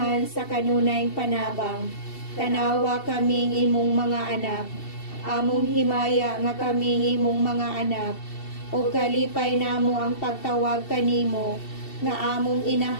sa kanunay panabang. Tanawa kaming imong mga anak, among himaya nga kaming imong mga anak, o kalipay namo ang pagtawag kanimo nga among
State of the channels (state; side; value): late; right; 2.7 ms